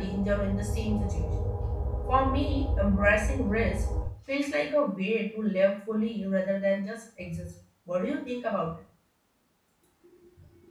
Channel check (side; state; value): both; identical; correlation 1.00